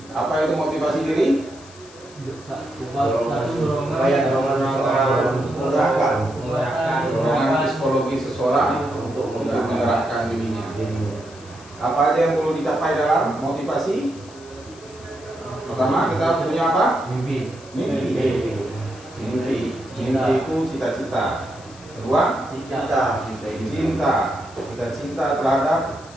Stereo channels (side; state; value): left; noise; hiss, 22 dB below the sound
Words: Apa itu motivasi diri? Dorongan psikologi seseorang untuk menggerakkan dirinya. Apa aja yang perlu dicapai dalam motivasi? Pertama, kita harus punya apa? Mimpi. Mimpi itu cita-cita. Kedua, cinta. Kita cinta terhadap